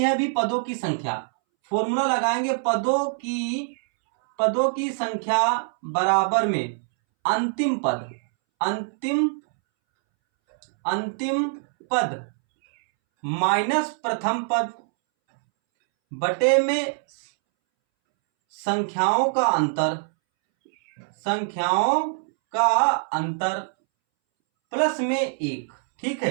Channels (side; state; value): left; silent; 63 dB below the other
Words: अभी पदों की संख्या, फॉर्मूला लगाएंगे, पदों की संख्या बराबर में अंतिम पद माइनस प्रथम पद बटे में संख्याओं का अंतर प्लस में 1। ठीक है,